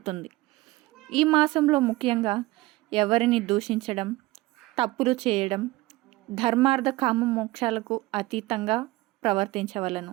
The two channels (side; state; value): left; quieter; 19.9 dB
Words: ఈ మాసంలో ముఖ్యంగా ఎవరిని దూషించడం, తప్పులు చేయడం, ధర్మార్థ కామ మోక్షాలకు అతీతంగా